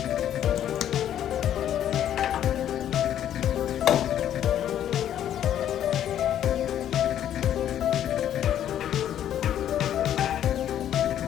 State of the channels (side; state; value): right; quieter; 10.7 dB